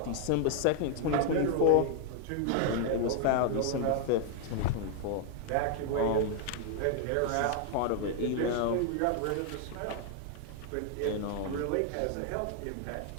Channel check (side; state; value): both; different; correlation 0.00